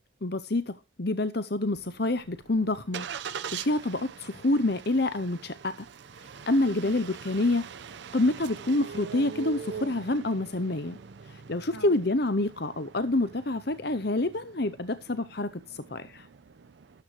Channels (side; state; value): both; normal; correlation 0.45